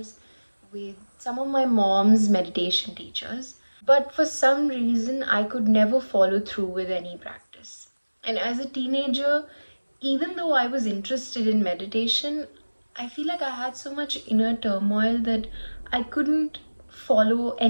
with some of my mom's meditation teachers. But for some reason, I could never follow through with any practice. And as a teenager, even though I was interested in meditation, I feel like I had so much inner turmoil that I couldn't follow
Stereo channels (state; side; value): inverted; both; correlation -1.00